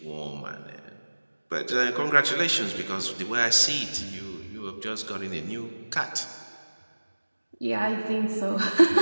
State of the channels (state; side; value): inverted; both; correlation -1.00